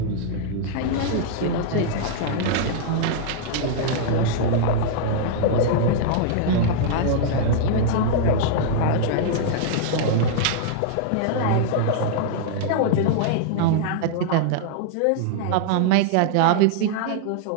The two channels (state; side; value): different; both; correlation -0.01